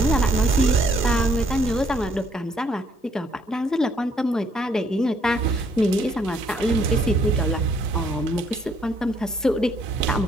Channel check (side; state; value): both; normal; correlation 0.67